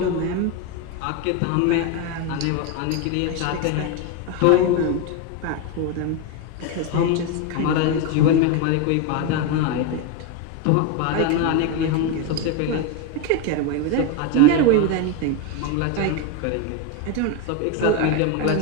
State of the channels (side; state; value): both; different; correlation 0.02